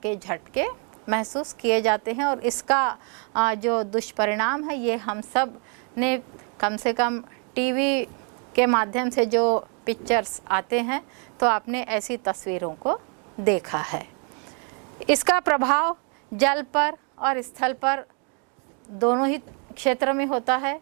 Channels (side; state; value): left; quieter; 38.5 dB